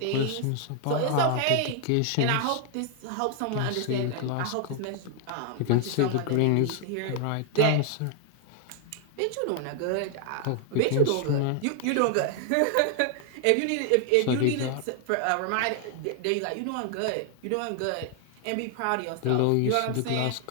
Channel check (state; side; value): different; both; correlation 0.00